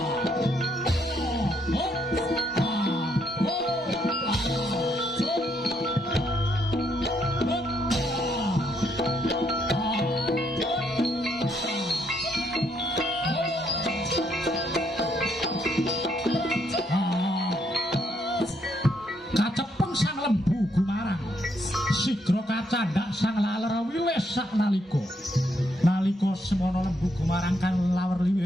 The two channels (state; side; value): normal; both; correlation 0.74